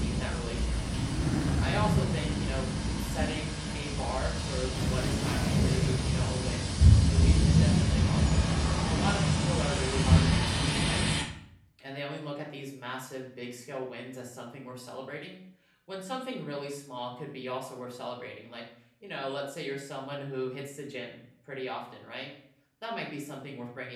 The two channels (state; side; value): identical; both; correlation 1.00